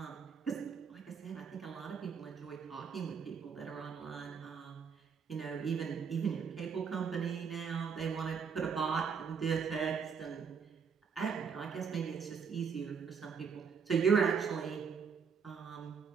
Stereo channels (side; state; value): left; quieter; 6.3 dB